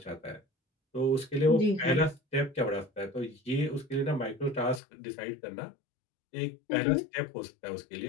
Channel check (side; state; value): right; drops out; at 4.8 s